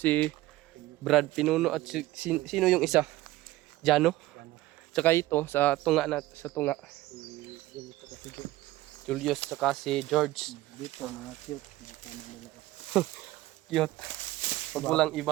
Si Brad Pinuno at sino yung isa? Jano? Tsaka ito, sa tunga. Julius, tsaka si George. Dito, mga cute. Cute. Pag walang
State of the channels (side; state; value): left; quieter; 17.1 dB